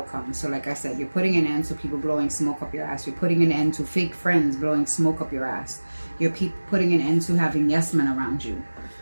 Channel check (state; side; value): inverted; both; correlation -1.00